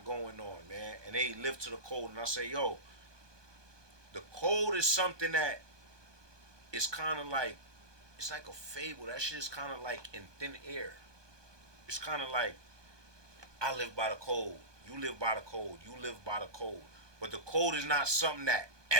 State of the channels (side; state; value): left; late; 1.2 ms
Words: going on, man, and they live to the code. And I say, yo, the code is something that is kind of like, it's like a fable. That shit is kind of like in thin air. It's kind of like, I live by the code, you live by the code, you live by the code. But the code is not something that